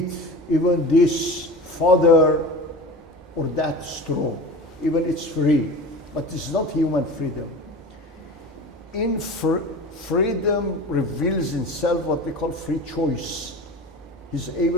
even this fodder or that straw. Even it's free, but it's not human freedom. In freedom reveals in self what we call free choice. He's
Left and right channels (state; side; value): normal; both; correlation 0.34